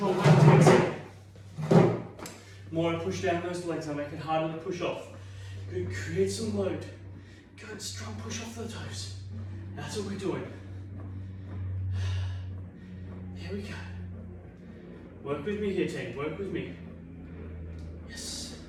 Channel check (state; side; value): identical; both; correlation 1.00